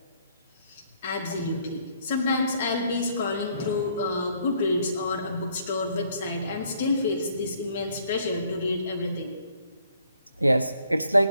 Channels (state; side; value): inverted; both; correlation -0.66